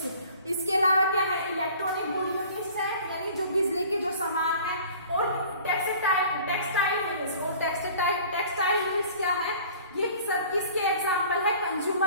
इसके अलावा क्या है इलेक्ट्रॉनिक गुड यूनिट्स है यानी जो बिजली के जो सामान है, और टेक्सटाइल यूनिट्स, और टेक्सटाइल यूनिट्स क्या है ये सब किसके एग्जाम्पल है,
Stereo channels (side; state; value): both; inverted; correlation -0.48